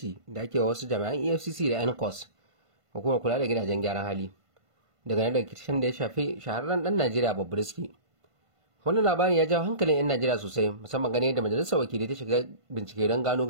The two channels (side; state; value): left; late; 1.5 ms